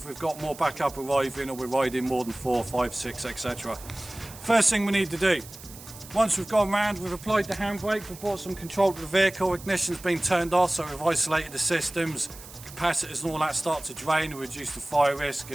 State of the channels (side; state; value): right; noise; hiss, 17 dB below the sound